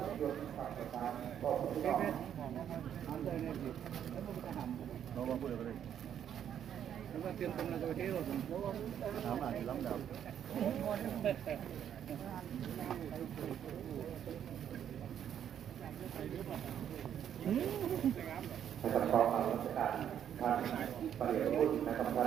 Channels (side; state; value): left; quieter; 9.5 dB